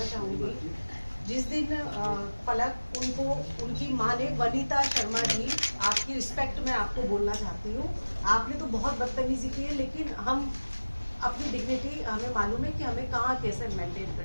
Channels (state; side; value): inverted; both; correlation -1.00